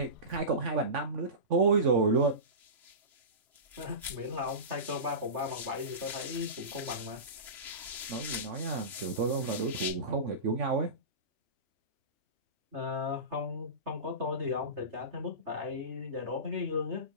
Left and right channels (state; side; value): late; left; 3.0 ms